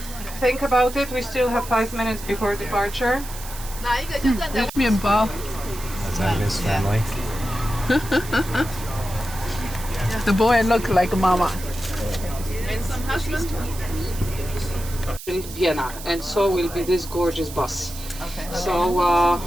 Think about it. We still have 5 minutes before departure. Mienbao. That's Agnes' family. The boy look like mama. And some husband. In Vienna, and so will be this gorgeous bus. Okay. So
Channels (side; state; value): right; noise; hiss, 13 dB below the sound